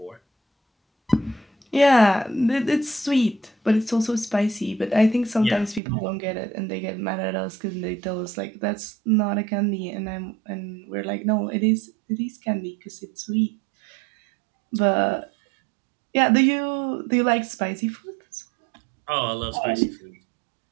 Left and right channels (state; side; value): drops out; left; at 5.8 s